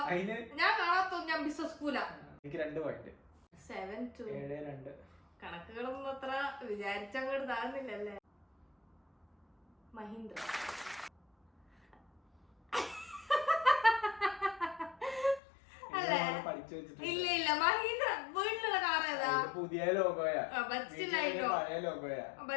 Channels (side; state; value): right; drops out; at 15.4 s